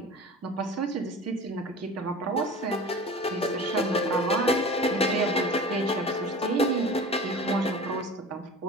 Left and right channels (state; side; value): normal; both; correlation 0.37